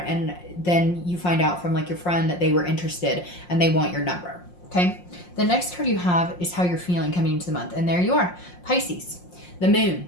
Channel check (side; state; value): right; late; 5.6 ms